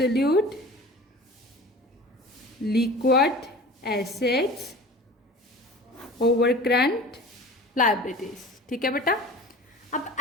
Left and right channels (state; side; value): normal; both; correlation 0.39